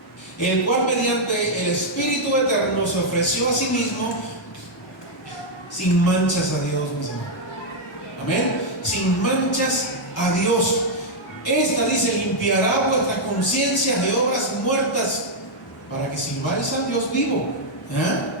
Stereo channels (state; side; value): normal; both; correlation -0.03